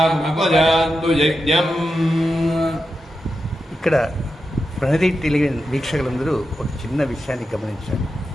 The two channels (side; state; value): both; normal; correlation 0.89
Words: यज्ञम्. ఇక్కడ ప్రణతి టెలివిజన్ వీక్షకులందరూ ఒక చిన్న విషయాన్ని గమనించారు.